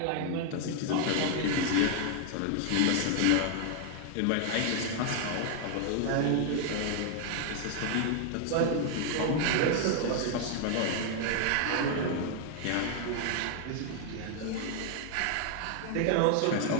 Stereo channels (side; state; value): both; different; correlation 0.00